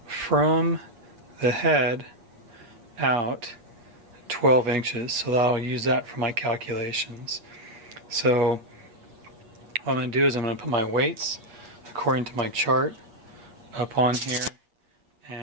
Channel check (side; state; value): left; late; 8.9 ms